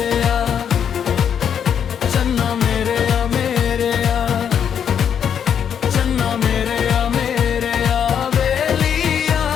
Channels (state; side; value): quieter; right; 8.2 dB